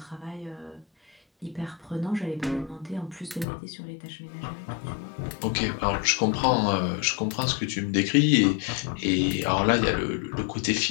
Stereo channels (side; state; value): right; drops out; at 3.5 s